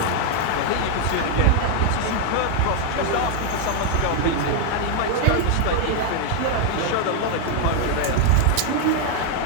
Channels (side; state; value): both; different; correlation 0.00